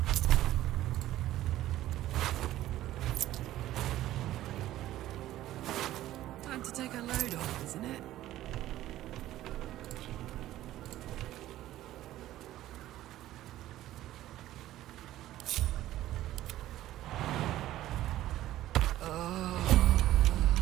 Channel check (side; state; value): left; quieter; 14.3 dB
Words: Time to take a load off, isn't it?